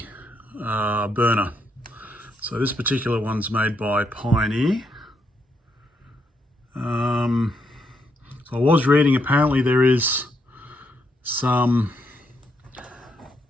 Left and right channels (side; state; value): both; normal; correlation 0.77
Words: burner. So this particular one's made by Pioneer. So I was reading, apparently there is some